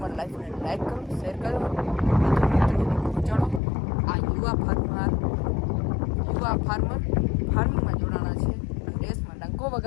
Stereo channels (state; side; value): drops out; right; at 3.6 s